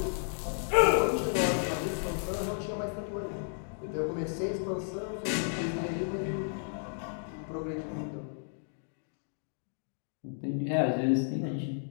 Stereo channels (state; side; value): silent; right; digital silence